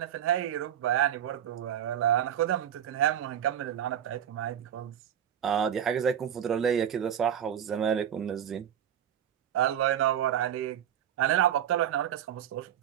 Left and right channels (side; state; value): left; quieter; 9.9 dB